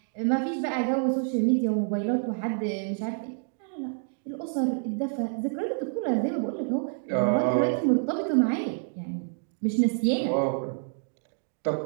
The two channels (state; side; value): silent; left; 59 dB below the other